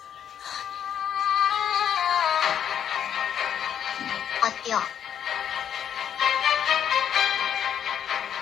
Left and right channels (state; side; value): quieter; right; 9.1 dB